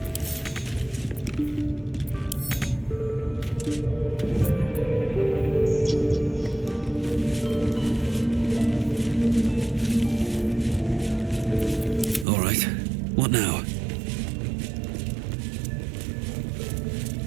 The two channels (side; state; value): left; drops out; at 12.2 s